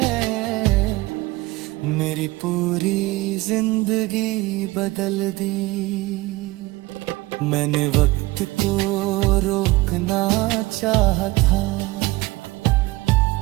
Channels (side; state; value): left; quieter; 20.8 dB